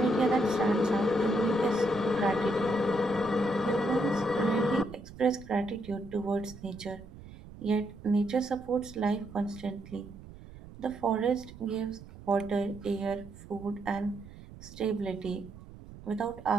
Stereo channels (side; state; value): right; noise; rumble, 17 dB below the sound